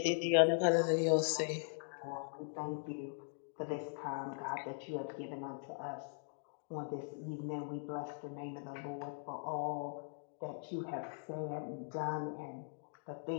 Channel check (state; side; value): silent; right; digital silence